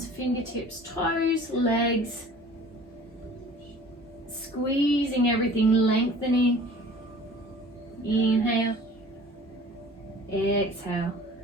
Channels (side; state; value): both; normal; correlation 0.47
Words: fingertips, toes, legs. Squeezing everything, lengthening. Inhale. Exhale.